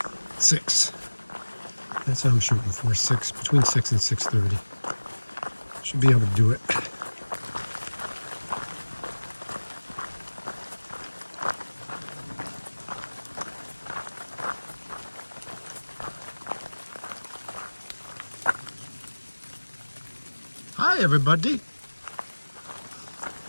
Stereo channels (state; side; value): inverted; both; correlation -1.00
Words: 6. That's what I'm shooting for, 6, between 6 and 6:30. Should be able to do it. Hi, everybody.